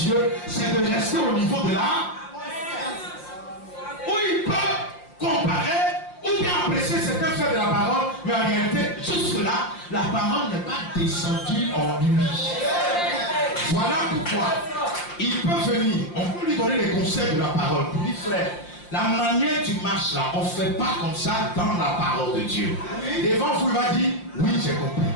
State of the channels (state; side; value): late; right; 5.7 ms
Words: c'est de rester au niveau de la où il peut comparer ou bien apprécier certains faits de la parole, mais en réalité, jusque-là, la parole n'est pas descendue en lui. Voilà pourquoi il peut venir, on peut lui donner les conseils de la parole. Pour dire, frère, la manière tu marches là, on ne fait pas comme ça dans la parole de Dieu. Devant vous, il va dire, oui, j'ai compris.